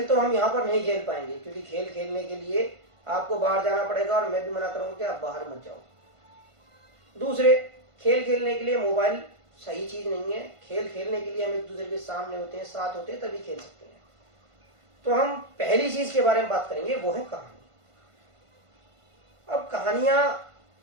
तो हम यहाँ पर नहीं खेल पाएंगे क्योंकि खेल खेलने के लिए आपको बाहर जाना पड़ेगा और मैं भी मना करूँगा कि आप बाहर मत जाओ। दूसरे, खेल खेलने के लिए मोबाइल सही चीज़ नहीं है। खेल खेलने के लिए हम एक दूसरे के सामने होते हैं, साथ होते हैं, तभी खेल सकते हैं। तो हम पहली चीज़ के बारे में बात करेंगे, वो है कहानी। अब कहानियाँ,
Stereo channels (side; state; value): left; late; 1.5 ms